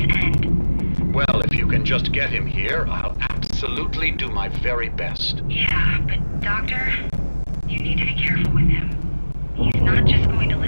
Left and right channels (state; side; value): inverted; both; correlation -1.00